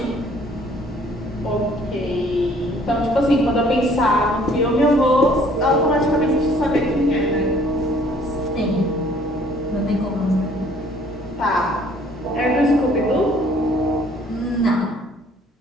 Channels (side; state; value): both; normal; correlation 0.58